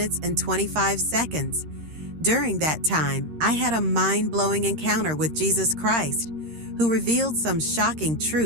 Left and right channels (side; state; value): left; late; 13 ms